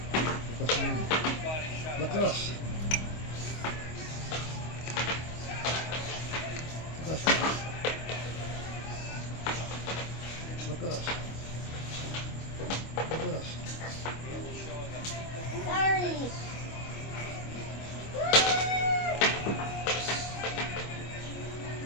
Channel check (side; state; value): right; late; 25 ms